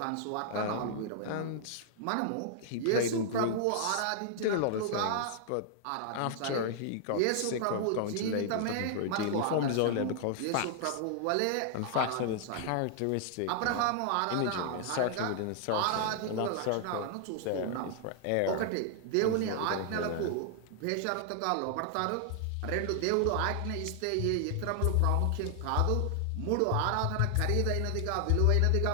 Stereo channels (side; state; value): both; different; correlation 0.00